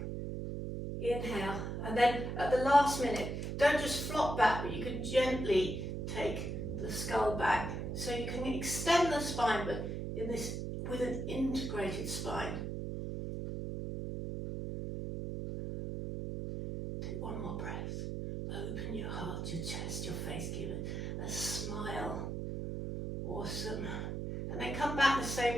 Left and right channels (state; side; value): noise; right; hum, 4 dB below the sound